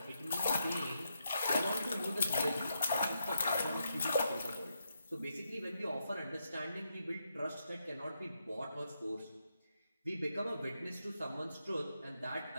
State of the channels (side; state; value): both; inverted; correlation -0.82